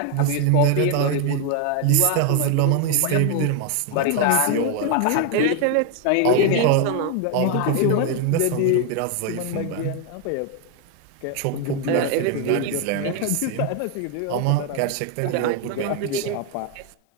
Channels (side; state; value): both; different; correlation 0.01